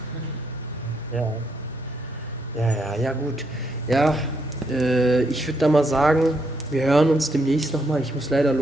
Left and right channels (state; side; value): normal; both; correlation 0.76